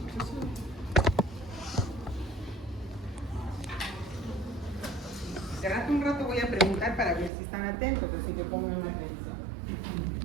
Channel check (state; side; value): drops out; left; at 7.3 s